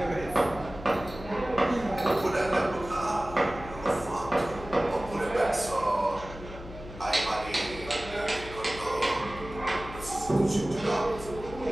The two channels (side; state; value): left; noise; hum, 14 dB below the sound